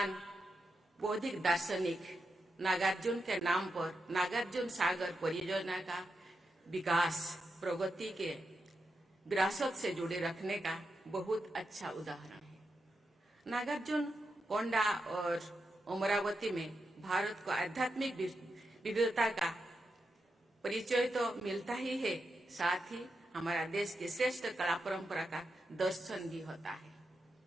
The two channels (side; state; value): both; normal; correlation 0.86